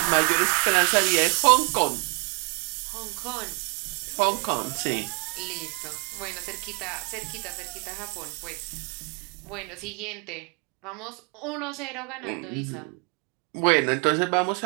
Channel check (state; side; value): quieter; left; 32.3 dB